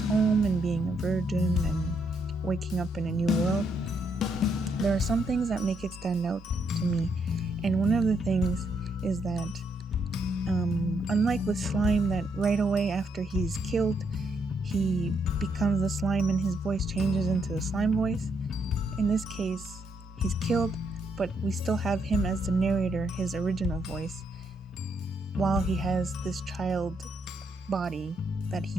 home and being a virgin and waking up in a new world, there are some things that make it stand out to me. And one of the things is that unlike with slime, that right away after he's killed he becomes the slime and his voice changes into the slime voice, in this case he's killed, but we still have him as the narrator, his original voice, while he has this child body that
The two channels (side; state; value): both; normal; correlation 0.76